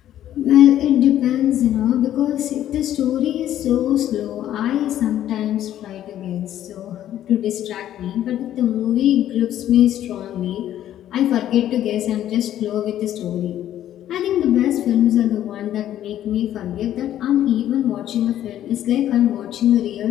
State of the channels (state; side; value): quieter; right; 11.8 dB